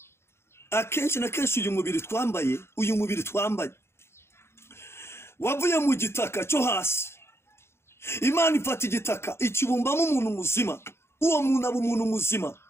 akenshi na kenshi uyu mubiri twambaye wavuye mu gitaka cyo hasi. Imana ifata igitaka ikibumbamo umuntu muzima, uwo muntu aba umuntu muzima.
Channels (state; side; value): late; right; 0.12 ms